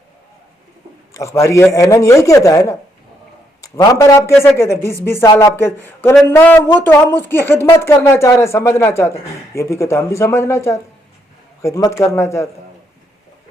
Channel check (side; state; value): both; normal; correlation 0.75